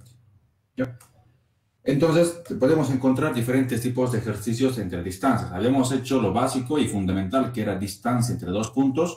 ¿Ya? Entonces, podemos encontrar diferentes tipos de ejercicios entre distancias. Habíamos hecho lo básico y fundamental, que era distancia entre dos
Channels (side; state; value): both; identical; correlation 1.00